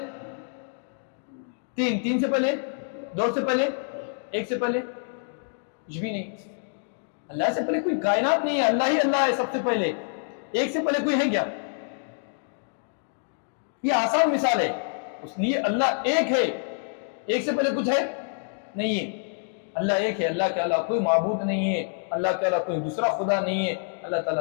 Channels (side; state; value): right; silent; 60 dB below the other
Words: 3 سے پہلے, 2 سے پہلے, 1 سے پہلے, کچھ بھی نہیں. اللہ سے پہلے کوئی کائنات نہیں ہے, اللہ ہی اللہ ہے سب سے پہلے. 1 سے پہلے کوئی ہے کیا؟ یہ آسان مثال ہے. اس لیے اللہ ایک ہے, 1 سے پہلے کچھ ہے نہیں ہے. اللہ ایک ہے, اللہ کے علاوہ کوئی معبود نہیں ہے, اللہ کے علاوہ کوئی دوسرا خدا نہیں ہے. اللہ